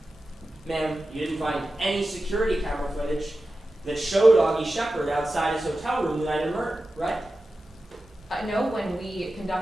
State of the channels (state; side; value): normal; both; correlation 0.93